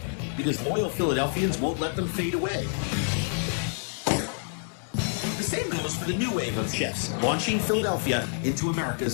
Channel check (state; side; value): silent; right; digital silence